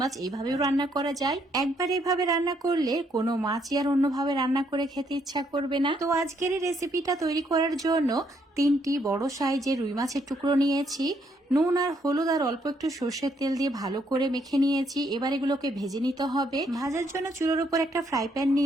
এইভাবেও রান্না করা যায়। একবার এইভাবে রান্না করলে কোনো মাছই আর অন্যভাবে রান্না করে খেতে ইচ্ছা করবে না। তো আজকের এই রেসিপিটা তৈরি করার জন্য 3টি বড় সাইজের রুই মাছের টুকরো নিয়েছি। নুন আর হলুদ আর অল্প একটু সর্ষের তেল দিয়ে ভালো করে মেখে নিয়েছি। এবার এগুলোকে ভেজে নিতে হবে। ভাজার জন্য চুলোর উপর একটা ফ্রাই প্যান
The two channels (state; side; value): normal; both; correlation 0.72